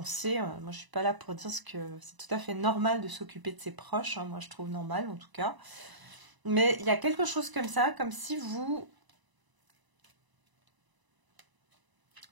Moi, je suis pas là pour dire que c'est tout à fait normal de s'occuper de ses proches. Hein, moi, je trouve normal en tout cas. Mais il y a quelque chose comme ça, comme si vous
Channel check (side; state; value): left; late; 1.0 ms